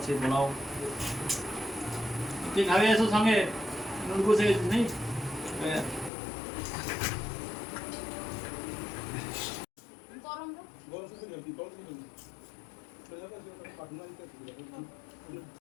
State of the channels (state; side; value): drops out; right; at 6.1 s